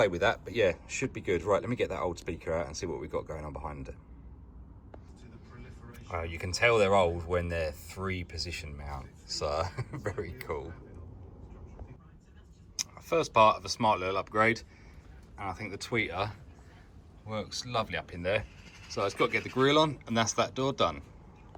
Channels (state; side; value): identical; both; correlation 1.00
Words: with that, but yeah, should be good. Right, let me get that old speaker out and see what we've got going on behind it. You can tell they're old when they're 3-position mount, so very cool. First part of a smart little upgrade, and I think the tweeter works lovely up in there. So it's got to get the grille on, and that's that door done.